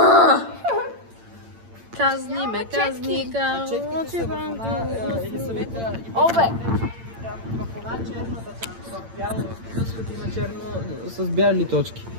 Казни ме, казни, Четките са в една или съвета... Обе! В една черната там, в бяло, в има черно с бяли точки.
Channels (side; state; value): left; late; 8.8 ms